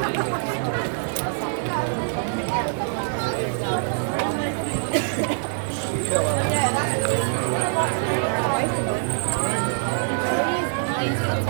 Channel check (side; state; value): left; silent; digital silence